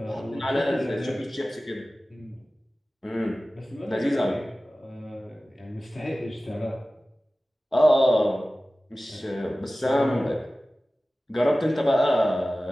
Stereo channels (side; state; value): both; normal; correlation 0.96